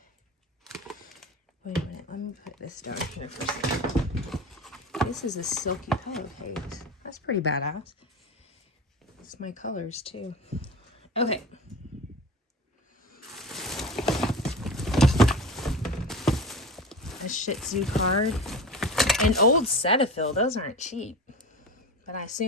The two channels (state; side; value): normal; both; correlation 0.31